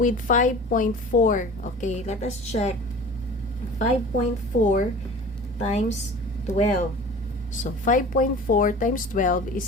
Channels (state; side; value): normal; both; correlation 0.40